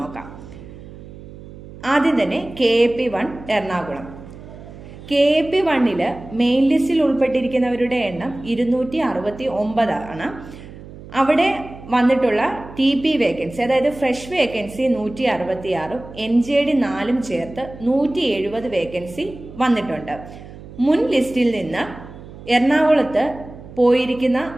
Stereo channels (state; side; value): noise; right; hum, 16 dB below the sound